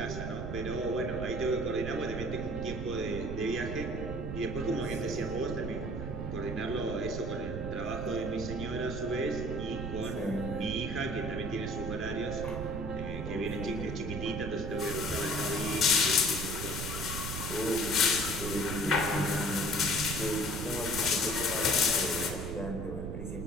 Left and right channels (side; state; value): right; noise; rumble, 5 dB below the sound